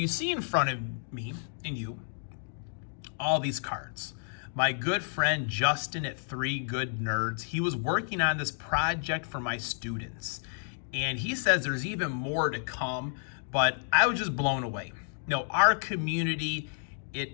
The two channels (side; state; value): right; silent; digital silence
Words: see in front of me and you all these cards. My good friend Justin at 3 Good Nerds, he was working on this project for my students. And he says there's even more to come, but I was just blown away. Our community,